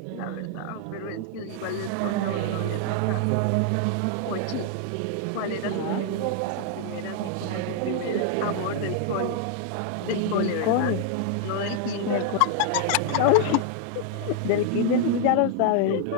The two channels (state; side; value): different; both; correlation 0.00